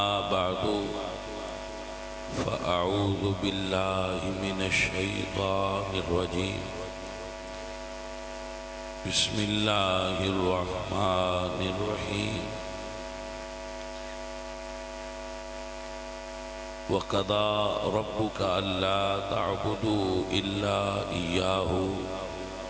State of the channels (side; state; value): both; identical; correlation 1.00